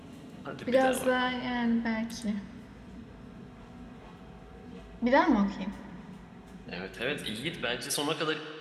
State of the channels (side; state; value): both; identical; correlation 1.00